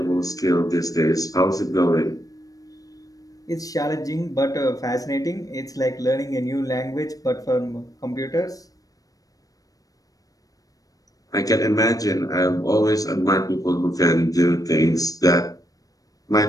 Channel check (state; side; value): late; right; 0.17 ms